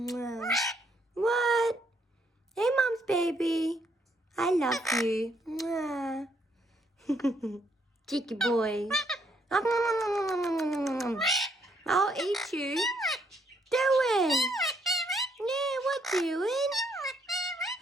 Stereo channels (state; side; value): normal; both; correlation 0.71